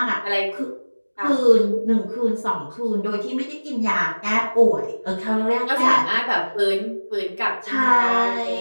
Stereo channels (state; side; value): inverted; both; correlation -1.00